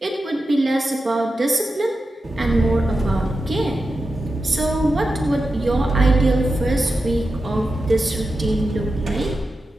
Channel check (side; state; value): both; normal; correlation 0.91